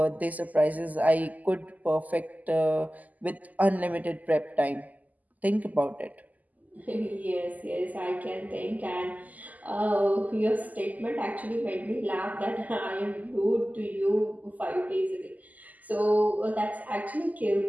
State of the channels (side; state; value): left; late; 0.079 ms